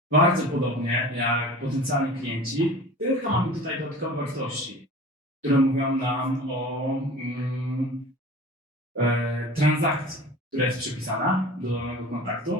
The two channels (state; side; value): normal; both; correlation 0.40